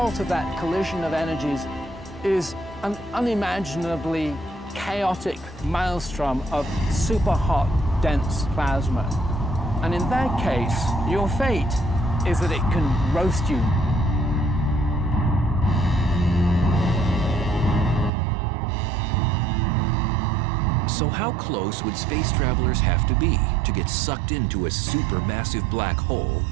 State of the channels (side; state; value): left; drops out; at 18.1 s